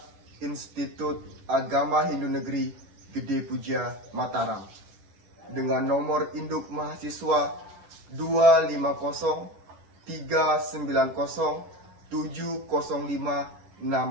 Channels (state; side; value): late; left; 10 ms